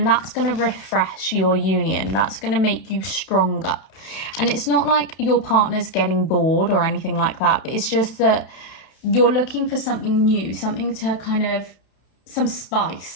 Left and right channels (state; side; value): late; right; 31 ms